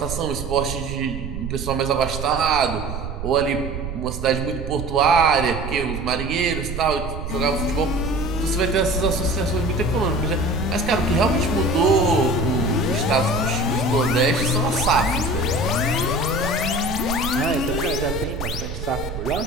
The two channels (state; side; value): noise; right; rumble, 7 dB below the sound